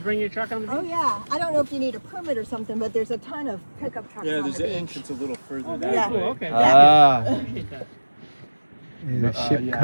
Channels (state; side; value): inverted; both; correlation -1.00